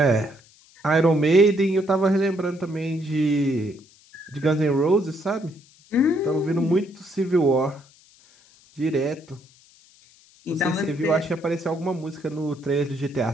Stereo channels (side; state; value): left; noise; hiss, 28 dB below the sound